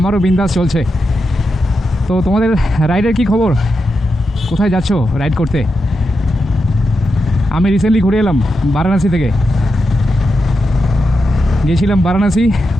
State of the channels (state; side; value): normal; both; correlation 0.87